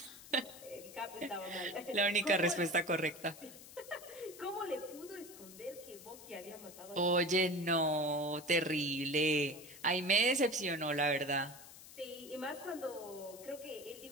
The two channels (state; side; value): noise; left; hiss, 17 dB below the sound